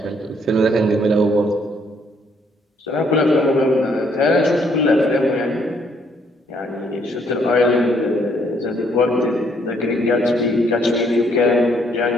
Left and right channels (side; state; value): both; normal; correlation 0.68